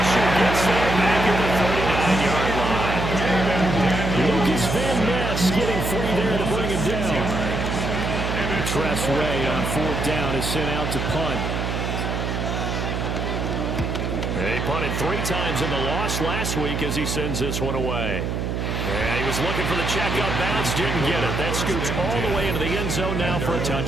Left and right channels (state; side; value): noise; right; hum, 2 dB below the sound